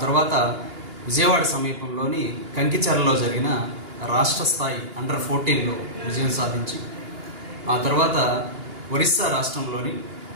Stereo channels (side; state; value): left; late; 2.8 ms